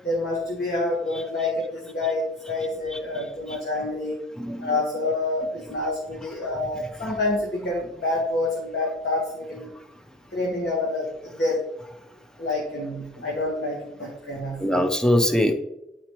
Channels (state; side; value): normal; both; correlation 0.42